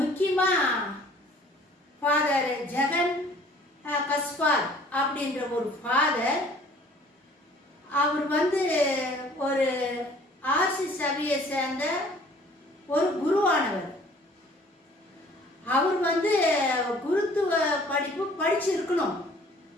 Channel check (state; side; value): normal; both; correlation 0.54